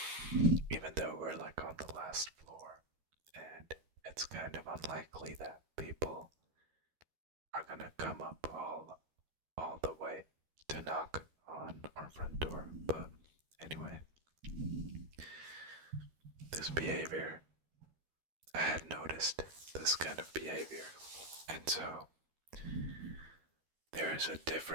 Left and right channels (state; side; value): late; left; 13 ms